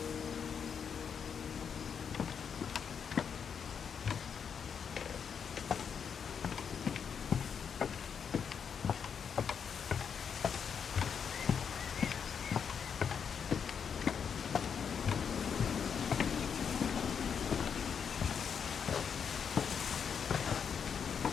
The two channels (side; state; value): right; quieter; 7.0 dB